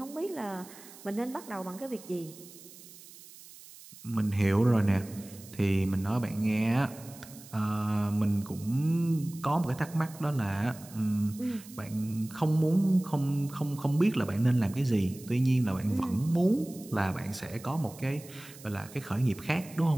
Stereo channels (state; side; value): noise; right; hiss, 19 dB below the sound